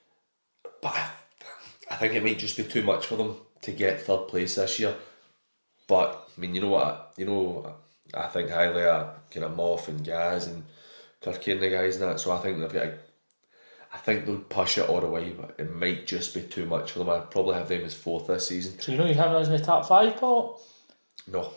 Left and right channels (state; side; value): inverted; both; correlation -1.00